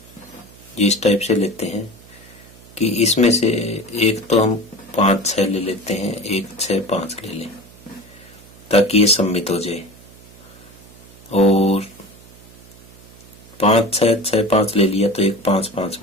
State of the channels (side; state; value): right; noise; hum, 22 dB below the sound